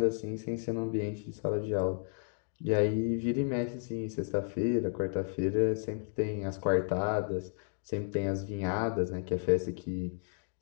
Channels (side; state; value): right; silent; 56 dB below the other